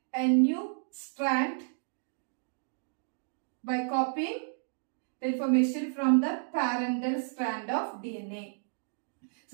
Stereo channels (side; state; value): left; silent; digital silence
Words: a new strand by copying the information from the parental strand of DNA.